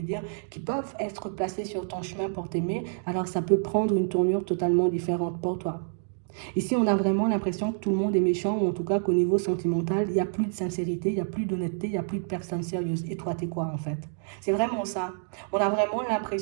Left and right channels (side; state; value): left; silent; digital silence